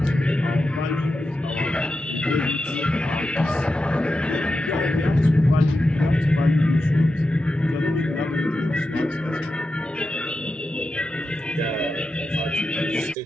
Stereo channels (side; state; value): both; normal; correlation 0.90